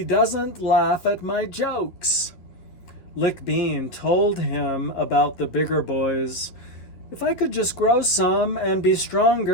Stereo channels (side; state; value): right; late; 11 ms